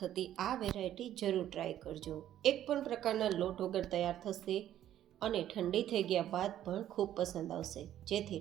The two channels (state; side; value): quieter; left; 11.8 dB